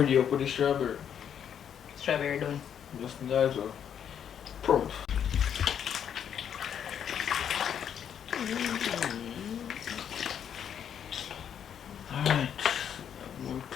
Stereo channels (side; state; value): right; quieter; 8.7 dB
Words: up with the strawberry. Strawberry done. Just that well. Prompt. Alright.